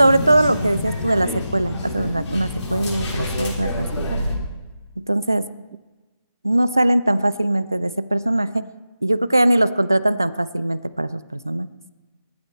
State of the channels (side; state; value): both; inverted; correlation -0.93